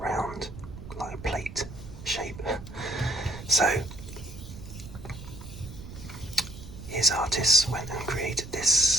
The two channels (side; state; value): right; noise; rumble, 13 dB below the sound